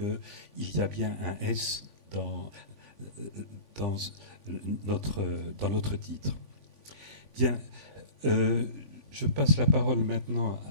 y a bien un S dans notre titre. Bien, je passe la parole maintenant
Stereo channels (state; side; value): late; right; 3.5 ms